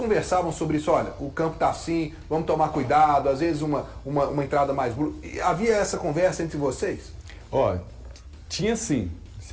sobre isso, olha, o campo tá assim, vamos tomar cuidado, às vezes uma entrada mais... Havia essa conversa entre vocês? Tinha sim.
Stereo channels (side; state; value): both; identical; correlation 1.00